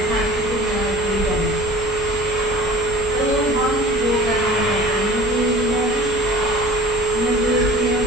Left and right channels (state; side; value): normal; both; correlation 0.45